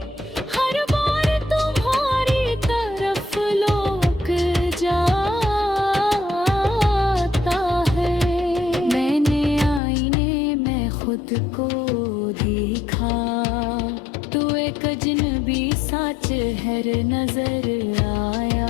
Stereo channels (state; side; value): drops out; right; at 9.8 s